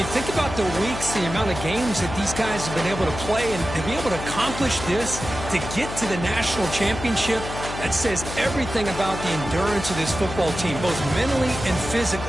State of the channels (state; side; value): noise; left; hum, 8 dB below the sound